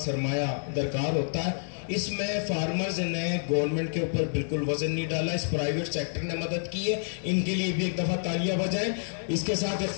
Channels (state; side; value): silent; right; digital silence